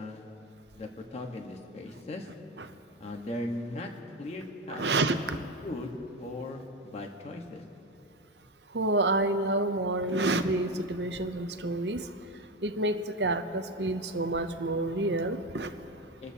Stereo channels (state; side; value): normal; both; correlation 0.17